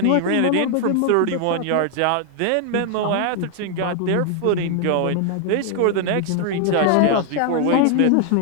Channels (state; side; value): different; both; correlation 0.00